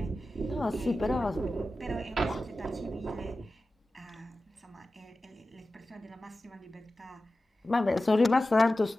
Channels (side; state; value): both; normal; correlation 0.94